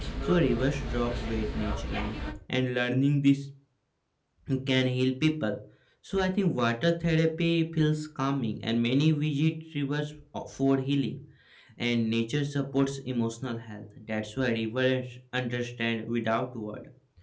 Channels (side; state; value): both; identical; correlation 1.00